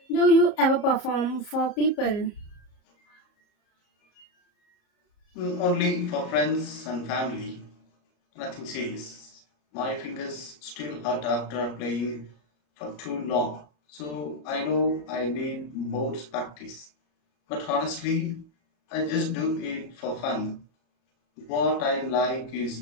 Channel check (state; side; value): late; right; 34 ms